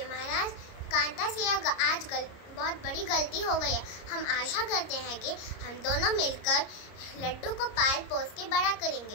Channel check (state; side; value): late; right; 30 ms